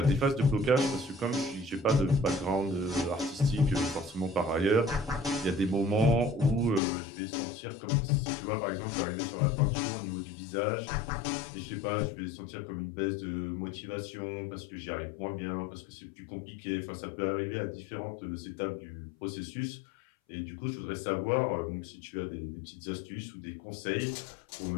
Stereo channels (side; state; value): right; drops out; at 6.8 s